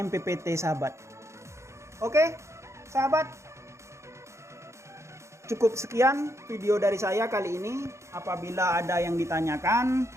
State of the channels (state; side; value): late; left; 0.14 ms